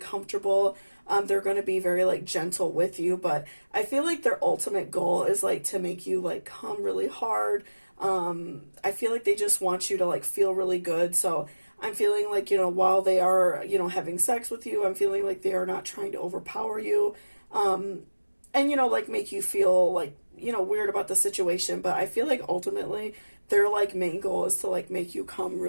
They're going to be very like gentle with you, but I feel like their ultimate goal is like to make you like come really hard. I feel like they just want you to like feel really good. So I'm feeling like, while they are, having sex with you, I'm feeling like they are not trying to overpower you. And, like make you feel like, weird about the situation. But I feel like ultimately their like main goal is to like make you come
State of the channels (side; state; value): both; inverted; correlation -1.00